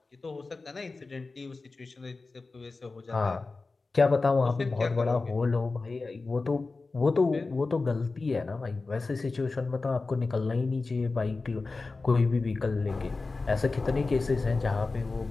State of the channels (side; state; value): right; quieter; 3.7 dB